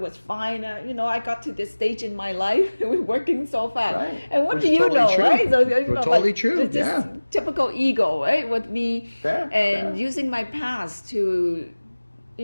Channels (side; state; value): both; inverted; correlation -1.00